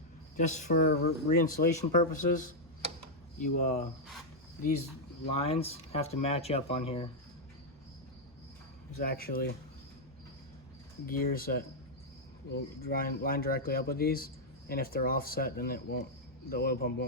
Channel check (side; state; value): both; normal; correlation -0.03